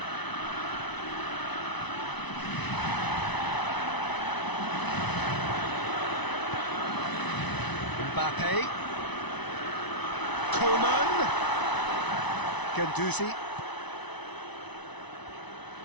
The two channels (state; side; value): late; right; 1.0 ms